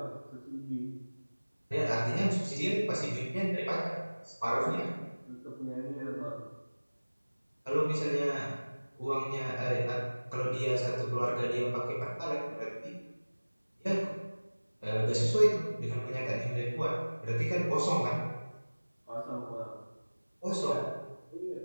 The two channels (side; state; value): both; inverted; correlation -1.00